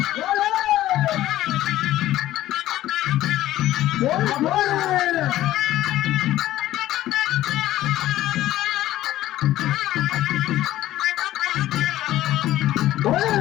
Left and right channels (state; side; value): quieter; right; 14.4 dB